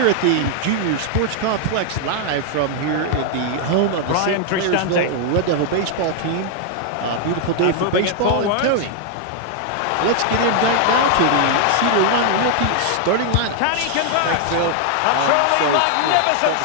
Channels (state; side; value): different; both; correlation 0.00